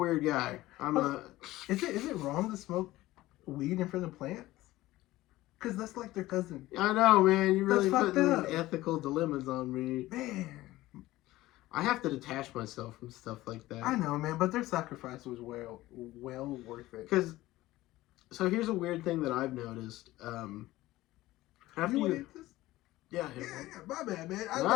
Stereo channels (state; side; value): quieter; right; 17.2 dB